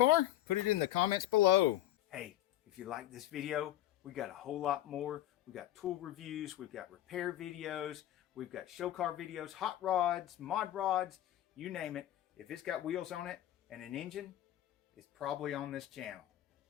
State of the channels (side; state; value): right; quieter; 13.6 dB